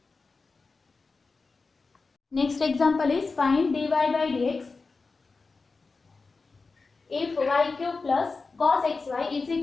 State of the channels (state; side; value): quieter; right; 4.1 dB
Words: Next example is find dy by dx if y cube plus cos xy is